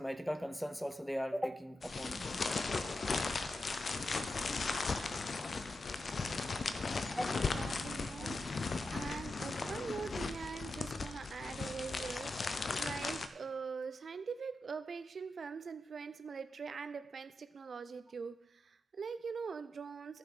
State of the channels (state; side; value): normal; both; correlation 0.89